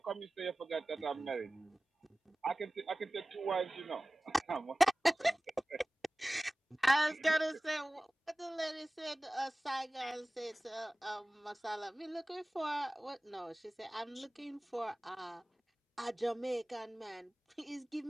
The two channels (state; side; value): normal; both; correlation 0.98